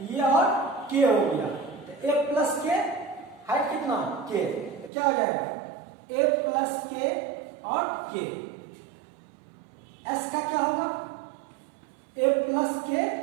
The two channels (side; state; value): left; drops out; at 4.9 s